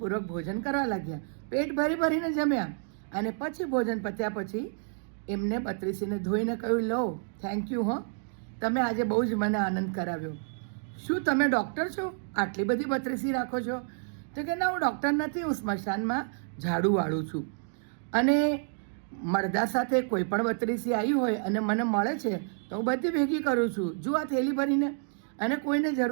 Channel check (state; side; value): silent; left; 58 dB below the other